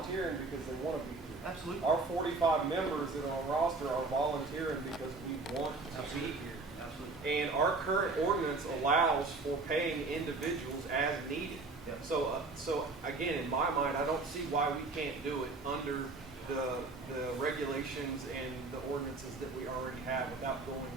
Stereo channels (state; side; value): quieter; left; 3.7 dB